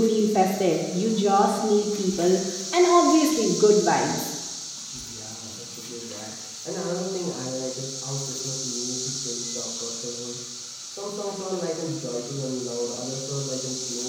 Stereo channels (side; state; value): both; identical; correlation 1.00